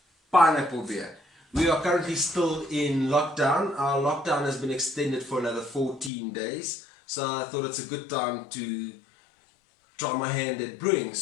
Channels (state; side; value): drops out; right; at 6.1 s